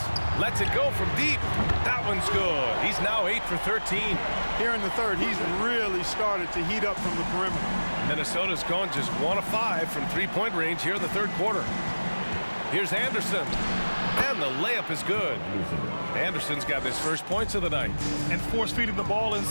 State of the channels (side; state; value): both; inverted; correlation -1.00